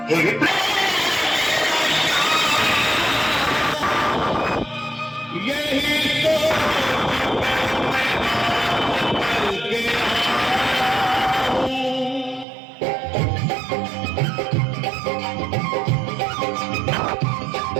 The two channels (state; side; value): drops out; left; at 12.5 s